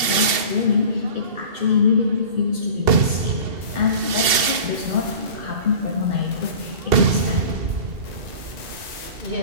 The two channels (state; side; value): late; left; 2.7 ms